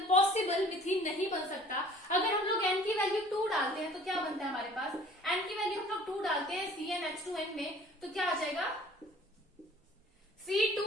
मिथीन नहीं बन सकता। अगर हम लोग एन की वैल्यू 2 डालते हैं तो क्या बनता है हमारे पास, एन की वैल्यू हम लोग 2 डालते हैं CnH2n में, तो क्या आ जाएगा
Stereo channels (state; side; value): normal; both; correlation 0.50